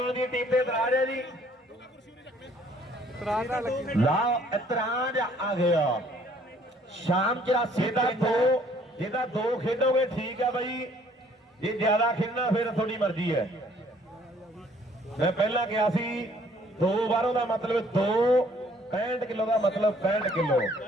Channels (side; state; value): both; normal; correlation 0.61